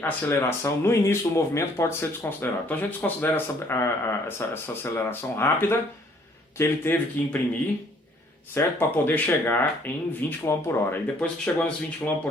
aceleração no início do movimento pode ser desconsiderada. Então a gente desconsidera essa aceleração rápida que ele teve que imprimir, certo? Para poder chegar em 20 km por hora. E depois que chegou nesses 20 km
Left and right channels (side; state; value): both; normal; correlation 0.62